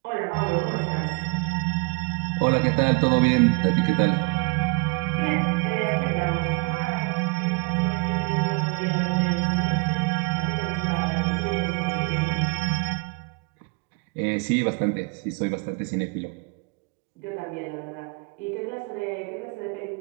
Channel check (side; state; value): left; quieter; 30.8 dB